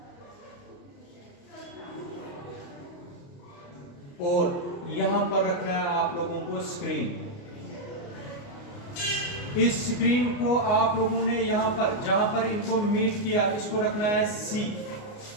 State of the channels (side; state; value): right; late; 29 ms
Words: और यहां पर रखना है आप लोगों को स्क्रीन। इस स्क्रीन को आप लोगों ने यहां पर, जहां पर इनको मीट किया, इसको रखना है C।